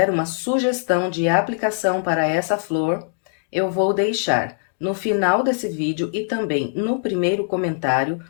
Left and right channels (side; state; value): right; silent; digital silence